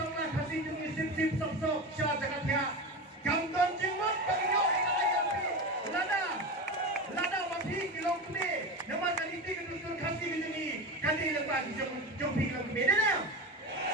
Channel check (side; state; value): both; normal; correlation 0.23